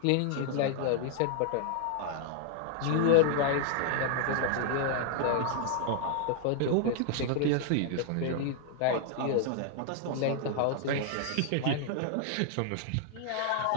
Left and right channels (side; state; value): both; different; correlation 0.00